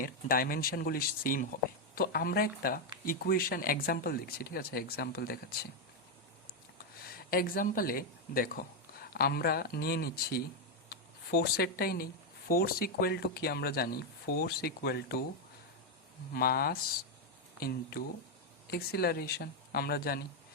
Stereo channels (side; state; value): both; normal; correlation 0.03